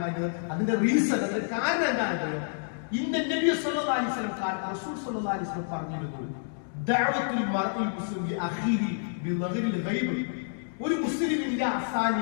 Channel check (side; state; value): right; silent; digital silence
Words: അതിന്റെ റീസൺ, അതിന്റെ കാരണം എന്താണെന്നറിയോ? ഇന്ന നബി സല്ലല്ലാഹു അലൈഹി വസല്ലം റസൂൽ സല്ലല്ലാഹു അലൈഹി വസല്ലം പറഞ്ഞിരുന്നു, ദഅവത്തുൽ മർഇ മുസ്ലിം അഖീരി ബിളഗ്രിൽ ഗൈബ്. ഒരു മുസ്ലിമിന്റെ